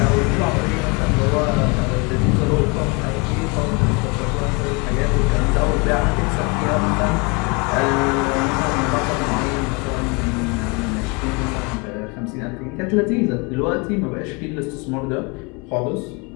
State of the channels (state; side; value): quieter; right; 29.3 dB